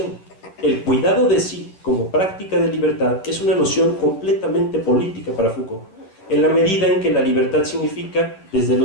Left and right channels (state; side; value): late; right; 10 ms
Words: El cuidado de sí como práctica de libertad es una noción completamente política para Foucault, en la medida en que la libertad significa, desde